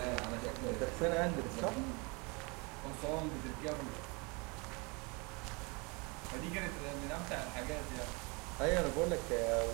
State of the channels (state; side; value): quieter; left; 29.4 dB